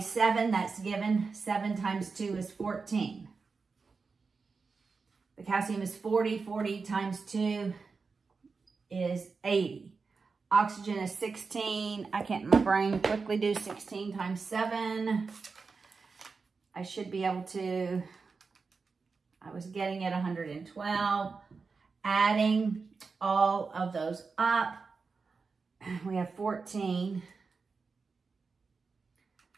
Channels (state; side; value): quieter; left; 4.7 dB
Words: 7. That's given. 7 times 2 is 14. The calcium is 40. 40 times 2 is 80. Oxygen is 16. I can't in my brain quickly do 16 times 7. I should be able to, I was getting at 112. Adding all of those up, we have 14